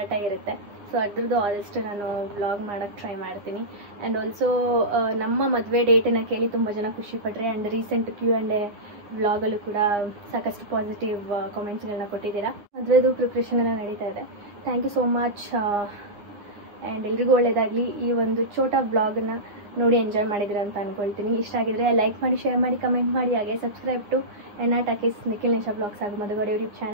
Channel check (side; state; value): left; late; 9.8 ms